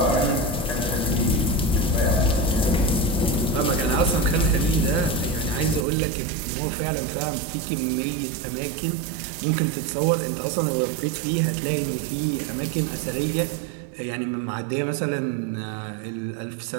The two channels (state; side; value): drops out; left; at 5.9 s